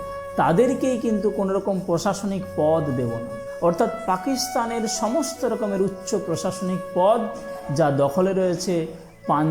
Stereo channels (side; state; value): both; identical; correlation 1.00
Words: তাদেরকেই কিন্তু কোনো রকম প্রশাসনিক পদ দেব না। অর্থাৎ পাকিস্তানের সমস্ত রকমের উচ্চ প্রশাসনিক পদ যা দখলে রয়েছে